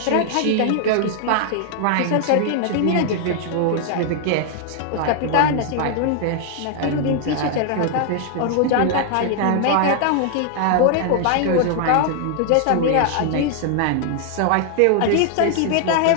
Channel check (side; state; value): both; different; correlation 0.00